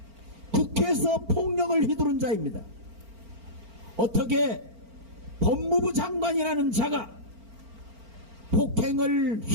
국회에서 폭력을 휘두른 자입니다. 어떻게 법무부 장관이라는 자가 폭행을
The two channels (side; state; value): left; late; 4.4 ms